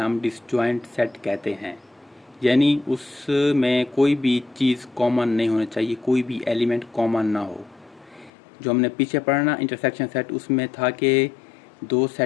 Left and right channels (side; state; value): right; drops out; at 8.3 s